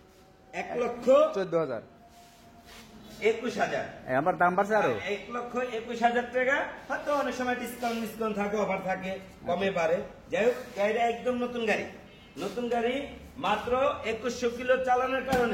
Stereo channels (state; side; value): identical; both; correlation 1.00